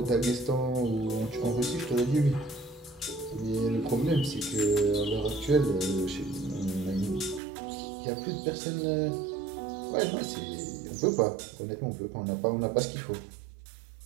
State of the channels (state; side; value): drops out; left; at 7.4 s